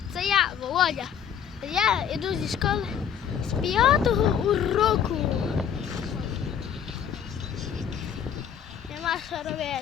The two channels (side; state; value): right; quieter; 8.4 dB